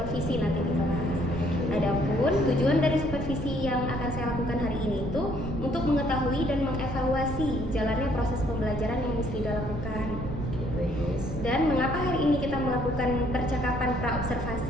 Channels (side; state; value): right; noise; rumble, 6 dB below the sound